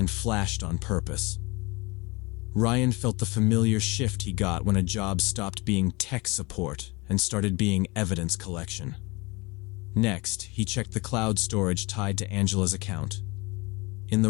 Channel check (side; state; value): right; quieter; 25.7 dB